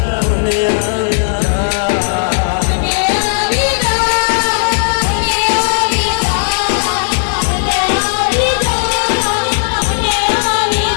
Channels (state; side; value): silent; right; digital silence